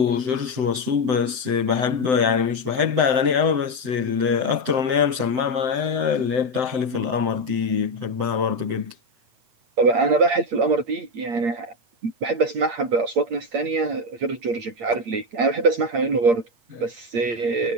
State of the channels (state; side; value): late; left; 7.8 ms